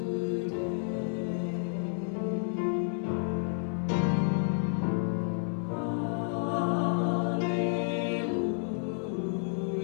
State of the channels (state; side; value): silent; right; digital silence